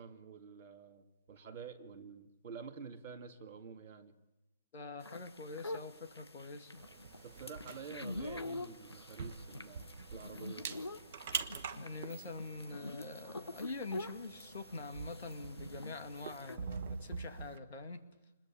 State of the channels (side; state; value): both; inverted; correlation -0.62